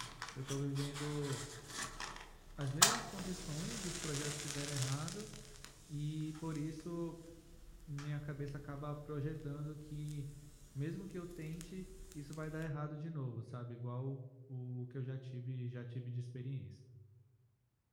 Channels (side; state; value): both; identical; correlation 1.00